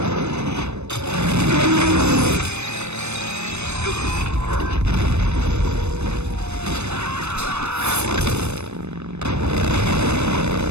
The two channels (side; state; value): left; late; 0.81 ms